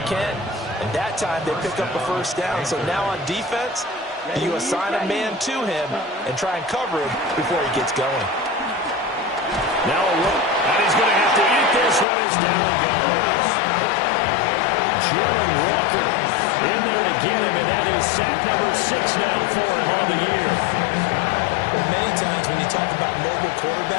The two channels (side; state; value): right; drops out; at 12.1 s